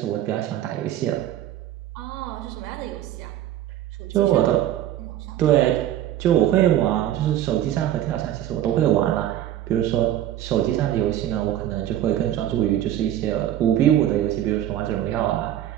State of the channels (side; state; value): left; quieter; 12.0 dB